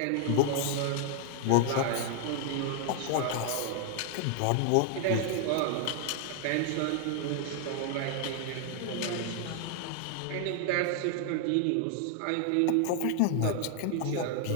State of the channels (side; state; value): both; different; correlation 0.00